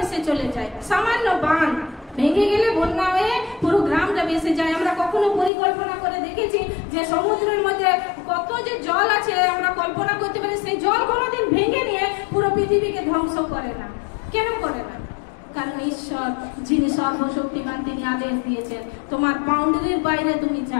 চলে যায়। সামান্য বাঁধ ভেঙে গেলে বন্যা হয়ে পুরো গ্রামটা ভেসে যায়। আমরা কখনো পরিকল্পনা করে দেখেছি যে সমুদ্রের মধ্যে কত যে জল আছে, আমরা কল্পনা করতে পারি সেই জল কোনোদিন ভেঙে নিয়ে পুরো পৃথিবীকে ধ্বংস করে না। কেন করে না? কারণ ঈশ্বর যিনি সর্বশক্তিমান, তিনি আদেশ দিয়েছেন তোমার বাউন্ডারির বাইরে তুমি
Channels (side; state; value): right; drops out; at 5.5 s